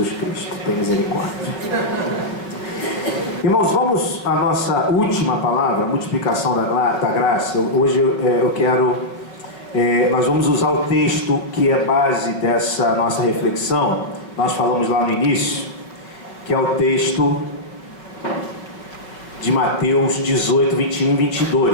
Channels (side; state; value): right; late; 5.2 ms